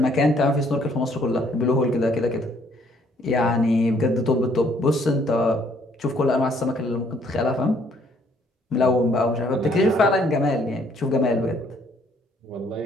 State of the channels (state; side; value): normal; both; correlation 0.65